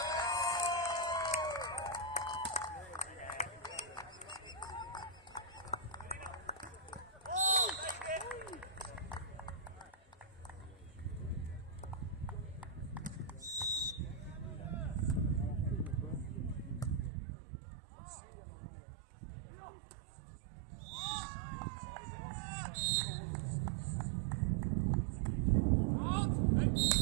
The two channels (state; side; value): drops out; left; at 17.1 s